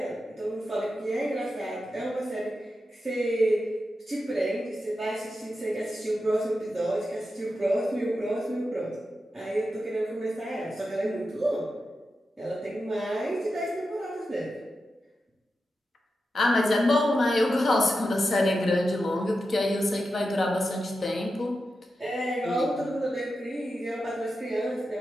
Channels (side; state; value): both; normal; correlation 0.90